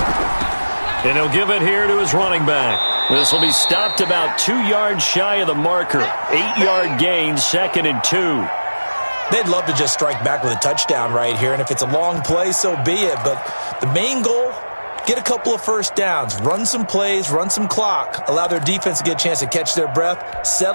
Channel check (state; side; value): inverted; both; correlation -1.00